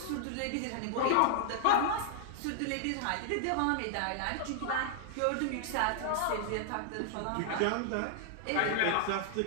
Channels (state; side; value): different; both; correlation -0.01